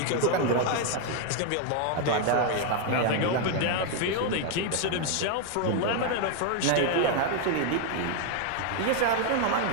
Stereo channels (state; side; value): different; both; correlation 0.01